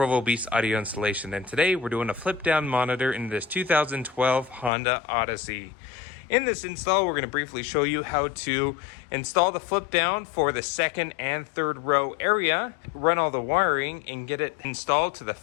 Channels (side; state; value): right; drops out; at 4.7 s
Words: Beast Audio Installation, and today we're doing a flip down monitor in this 2012 Honda Odyssey. In this install, we're going to briefly show you how to install the flip down for the second and third row area, run all the wiring, and get it installed to the